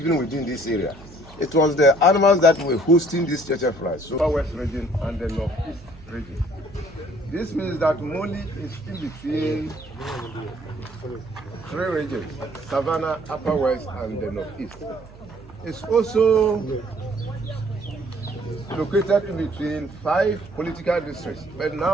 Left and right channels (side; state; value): right; noise; hum, 20 dB below the sound